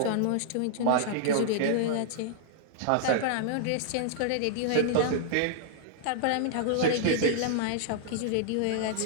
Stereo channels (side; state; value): both; different; correlation -0.01